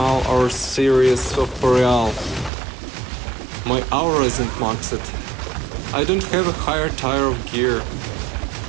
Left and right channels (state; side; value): drops out; left; at 2.5 s